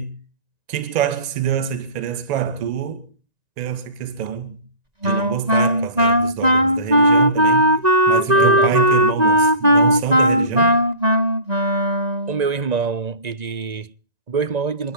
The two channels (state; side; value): late; left; 1.9 ms